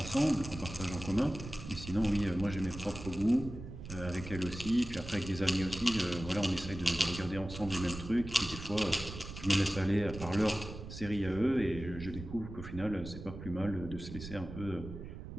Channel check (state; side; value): noise; right; rumble, 11 dB below the sound